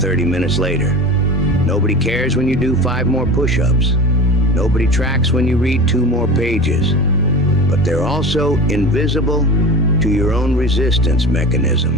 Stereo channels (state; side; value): normal; both; correlation 0.33